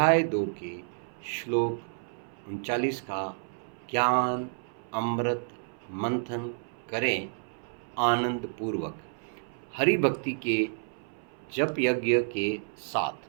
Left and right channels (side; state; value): left; silent; 58 dB below the other